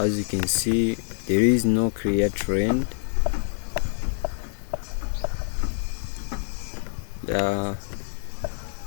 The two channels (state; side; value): silent; right; digital silence